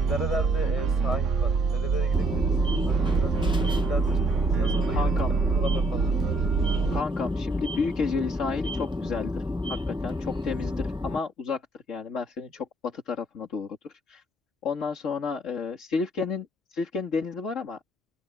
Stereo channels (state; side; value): normal; both; correlation 0.66